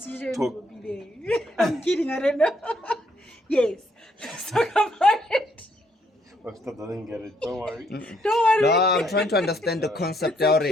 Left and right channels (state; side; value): normal; both; correlation 0.71